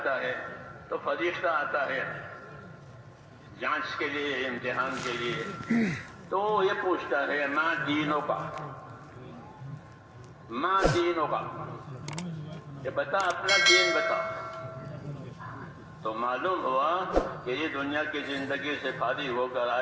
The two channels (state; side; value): identical; both; correlation 1.00